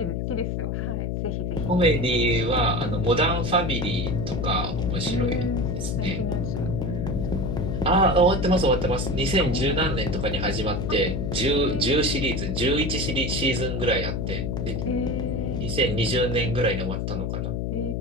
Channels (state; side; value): noise; left; hum, 1 dB below the sound